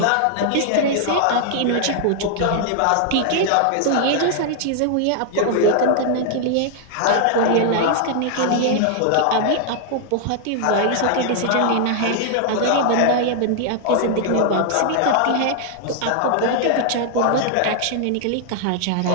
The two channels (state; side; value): different; both; correlation 0.00